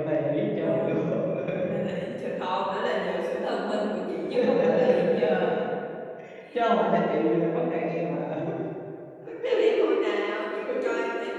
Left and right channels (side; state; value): both; identical; correlation 1.00